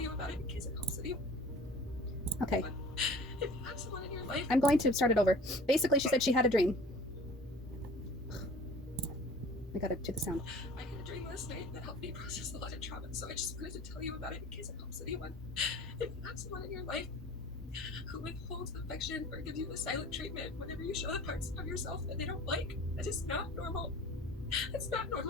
about it in case it helps you. Okay. If you have someone in your life, I'm going to start it over. Basically, she said she had a dream. I gotta do the sound. I had a dream last night that helped me process a lot of trauma, so I just wanted to tell you about it in case it helps anyone. If you have someone in your life who withholds affection or gives you the silent treatment whenever you show the parts of yourself that they don't like, that is not normal. It's not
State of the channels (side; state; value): both; normal; correlation 0.45